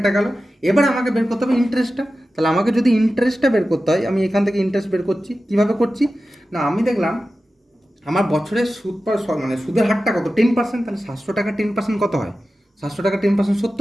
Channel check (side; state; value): both; normal; correlation 0.94